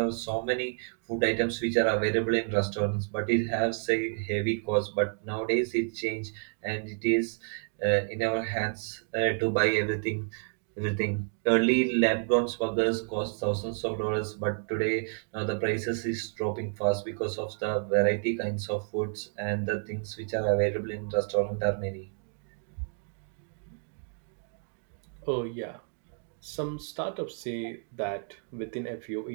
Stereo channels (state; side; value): silent; left; 56 dB below the other